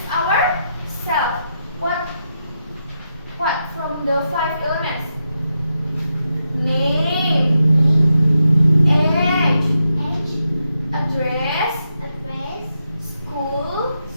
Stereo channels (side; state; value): both; inverted; correlation -0.85